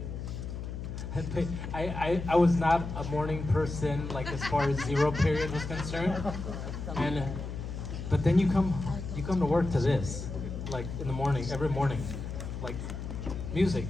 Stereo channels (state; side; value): noise; left; hum, 7 dB below the sound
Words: I was not a morning person, like as far as zero period was concerned, and but then you come to work to this, like in the morning, every morning, like music.